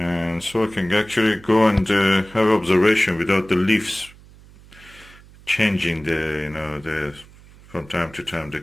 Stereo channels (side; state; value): right; noise; hum, 23 dB below the sound